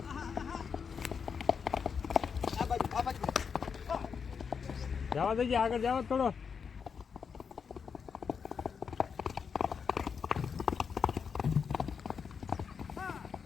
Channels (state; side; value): quieter; right; 6.3 dB